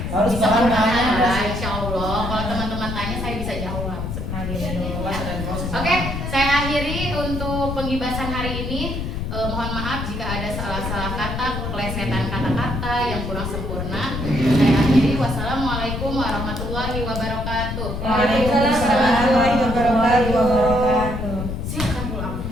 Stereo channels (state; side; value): noise; left; rumble, 4 dB below the sound